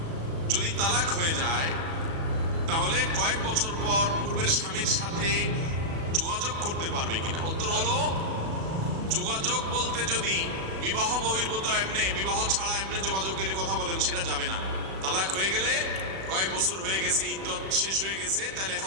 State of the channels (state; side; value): late; left; 36 ms